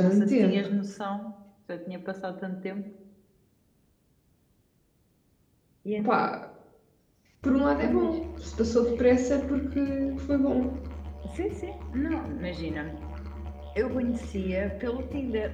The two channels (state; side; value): identical; both; correlation 1.00